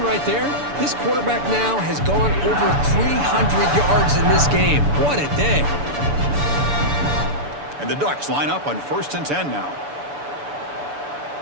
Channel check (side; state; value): left; late; 6.9 ms